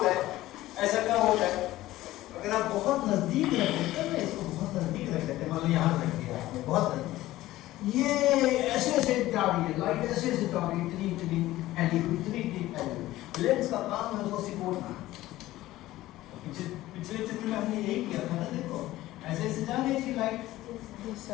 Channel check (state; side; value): quieter; right; 16.2 dB